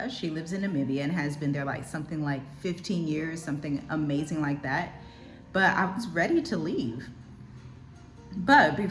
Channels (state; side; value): identical; both; correlation 1.00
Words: She lives in Namibia and has been there like something like 15 years, something amazing like that. But I was ready to leave. But